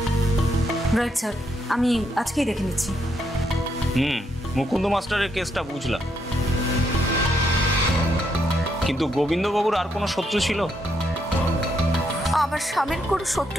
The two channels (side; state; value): both; normal; correlation 0.77